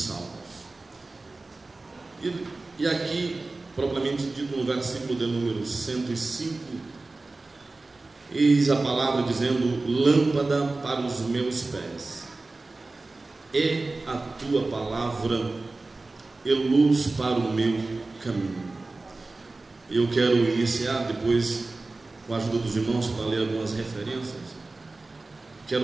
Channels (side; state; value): left; quieter; 3.3 dB